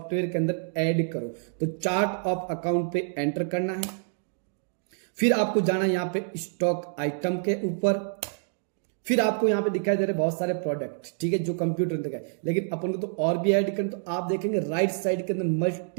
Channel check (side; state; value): left; silent; digital silence